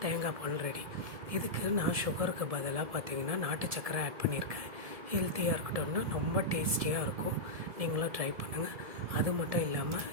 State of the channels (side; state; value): left; late; 1.7 ms